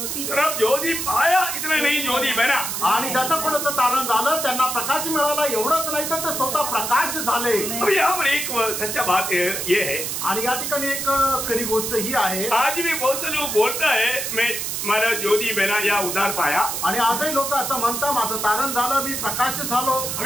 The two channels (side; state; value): right; noise; hiss, 3 dB below the sound